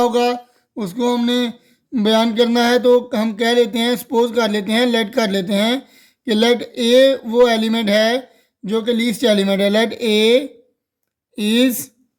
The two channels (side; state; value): both; identical; correlation 1.00